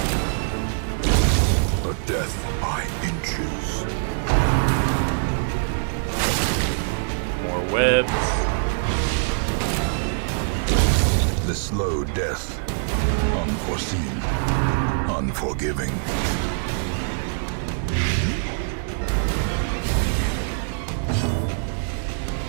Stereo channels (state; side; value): silent; left; digital silence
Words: A death by inches. More webs. The slow death. Unforeseen. Unforgiving.